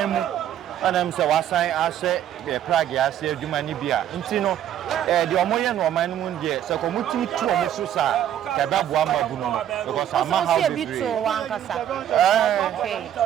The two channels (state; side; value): quieter; left; 10.9 dB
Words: ana mse wasan ahye Prague ase adwuma ni bia nti no de omoye no oman mu de se ko mutimi tu omo so sa ka ba bo ama bu no because ama how be free